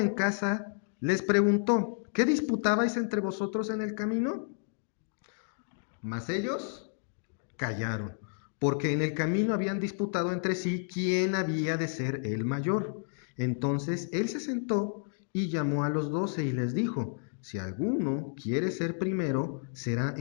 casa les preguntó, ¿qué disputabais entre vosotros en el camino? Mas ellos callaron, porque en el camino habían disputado entre sí quién había de ser el mayor. Entonces él se sentó y llamó a los 12 y les dijo, si alguno quiere ser primero, será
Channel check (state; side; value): silent; right; digital silence